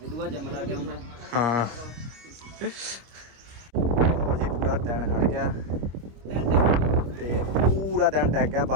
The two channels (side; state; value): left; late; 25 ms